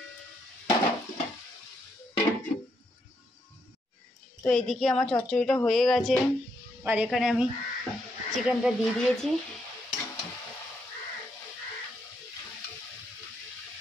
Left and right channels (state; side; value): normal; both; correlation 0.77